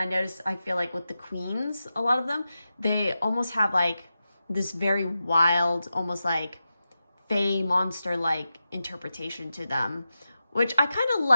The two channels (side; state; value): both; inverted; correlation -0.91